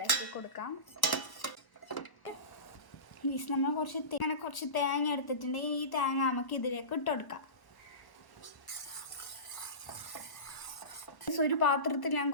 കൊടുക്കാം. നമ്മൾ കുറച്ച് തേങ്ങ എടുത്തിട്ടുണ്ട്. ഈ തേങ്ങ നമുക്ക് ഇതിലേക്ക് ഇട്ട് കൊടുക്കാം. ഒരു പാത്രത്തിൽ ഞാൻ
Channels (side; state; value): right; late; 1.1 ms